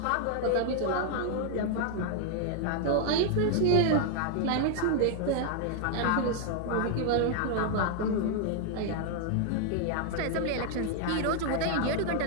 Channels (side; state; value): both; different; correlation 0.00